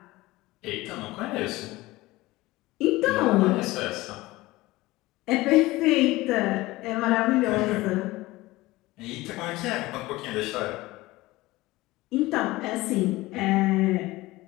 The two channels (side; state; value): right; quieter; 19.4 dB